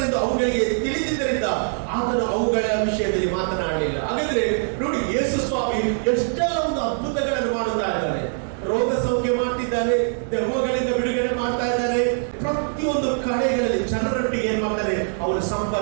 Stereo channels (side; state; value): left; silent; 64 dB below the other